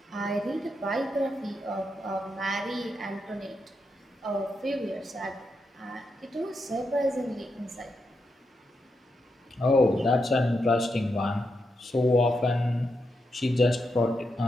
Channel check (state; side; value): normal; both; correlation 0.84